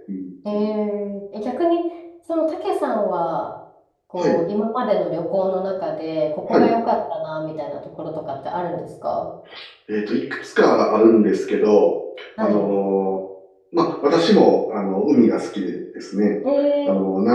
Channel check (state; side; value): identical; both; correlation 1.00